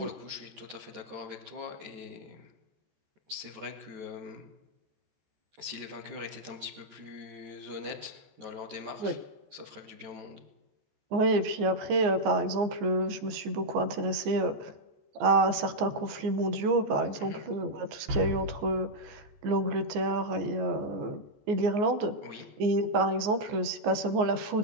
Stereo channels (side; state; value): left; late; 14 ms